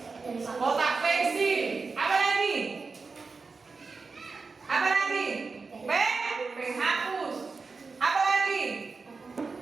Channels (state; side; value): quieter; left; 4.4 dB